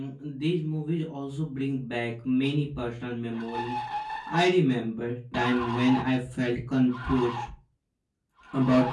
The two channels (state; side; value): identical; both; correlation 1.00